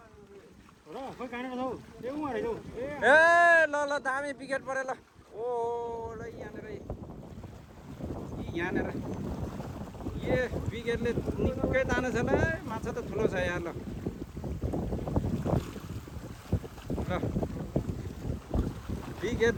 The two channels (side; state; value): both; identical; correlation 1.00